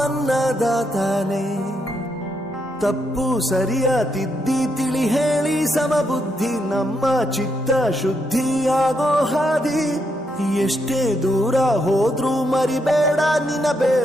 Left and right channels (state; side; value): normal; both; correlation 0.79